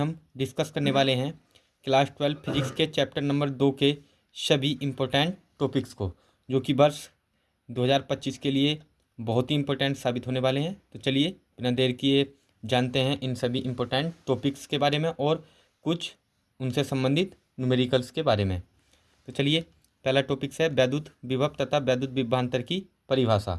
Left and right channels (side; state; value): both; identical; correlation 1.00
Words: डिस्कस करने वाले हैं क्लास 12 फिजिक्स के चैप्टर नंबर 2 के सभी इम्पोर्टेंट टॉपिक्स को, जो कि वर्ष 2025 के लिए बहुत ही इम्पोर्टेंट साबित होने वाले हैं। तो चलिए बिना देर किए जानते हैं इन सभी इम्पोर्टेंट टॉपिक्स के बारे में और कुछ उनसे संबंधित न्यूमेरिकल्स के बारे में। तो चलिए, पहला टॉपिक्स है वैद्युत विभव तथा वैद्युत विभवांतर की